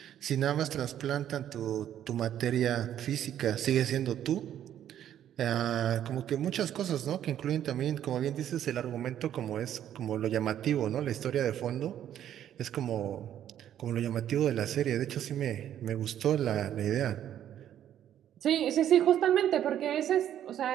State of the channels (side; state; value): left; quieter; 10.8 dB